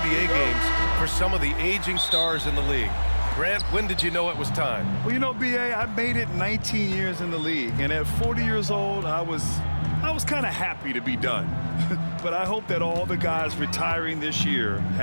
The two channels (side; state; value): both; inverted; correlation -1.00